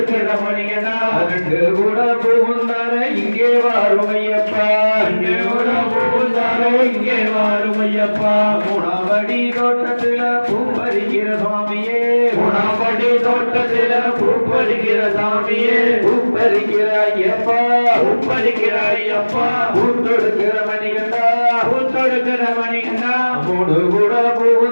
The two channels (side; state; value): both; inverted; correlation -1.00